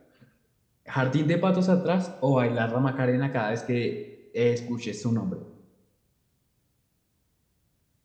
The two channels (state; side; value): identical; both; correlation 1.00